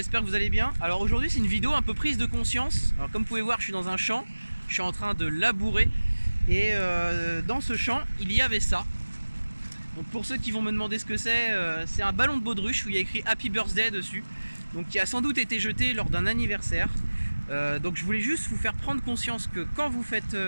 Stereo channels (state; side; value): inverted; both; correlation -1.00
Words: que vous allez bien. Alors aujourd'hui c'est une vidéo un peu prise de conscience. Alors comme vous pouvez voir, je suis dans un champ, je suis en train de labourer. Et dans ce champ, il y avait ça. Donc pour ceux qui vont me demander ce que c'est un ballon de baudruche où il y a écrit Happy Birthday dessus. Donc qui a sans doute été jeté lors d'un anniversaire. Donc je voulais juste vous faire prendre conscience que quand vous faites